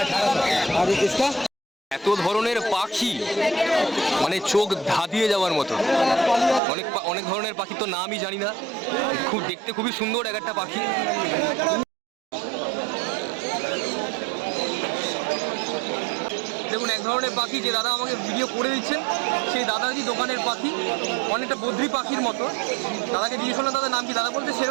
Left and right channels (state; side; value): drops out; left; at 6.6 s